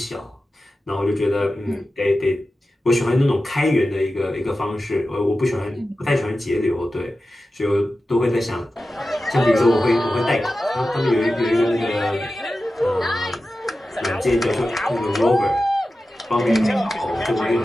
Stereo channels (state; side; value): normal; both; correlation 0.93